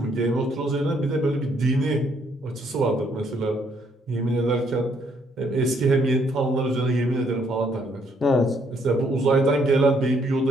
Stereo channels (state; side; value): normal; both; correlation 0.69